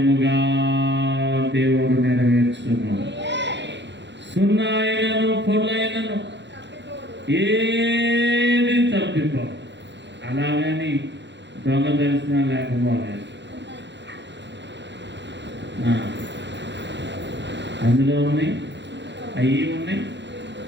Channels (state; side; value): late; left; 0.52 ms